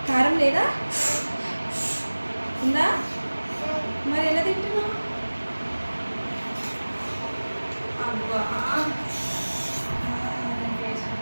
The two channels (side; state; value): both; inverted; correlation -1.00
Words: కారం లేదా? ఉందా? మరి ఎలా తింటున్నావు? అబ్బా